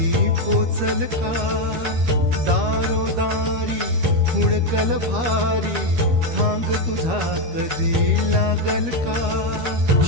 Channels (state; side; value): late; left; 13 ms